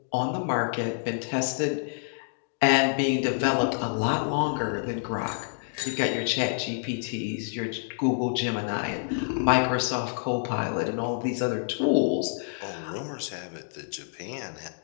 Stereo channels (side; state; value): right; silent; digital silence